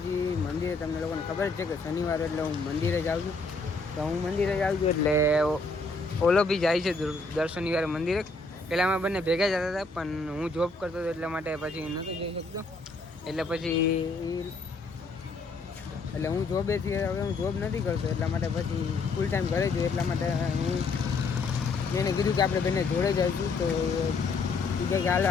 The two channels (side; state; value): right; quieter; 3.7 dB